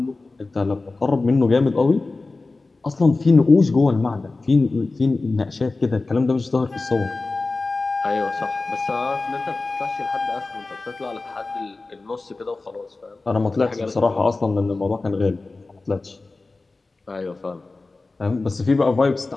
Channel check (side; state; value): right; quieter; 3.5 dB